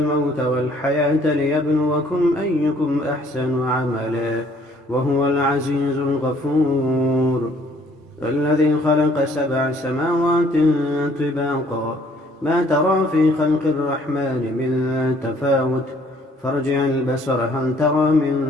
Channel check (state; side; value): normal; both; correlation 0.61